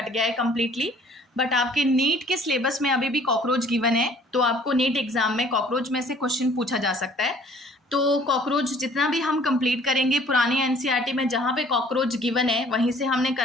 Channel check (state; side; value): normal; both; correlation 0.55